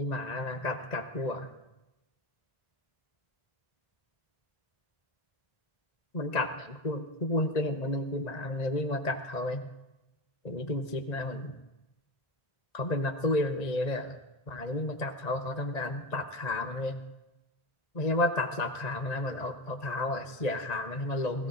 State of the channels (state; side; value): late; right; 1.8 ms